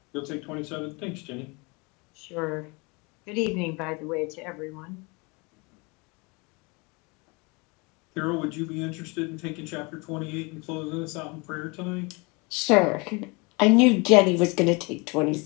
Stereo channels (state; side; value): quieter; right; 28.4 dB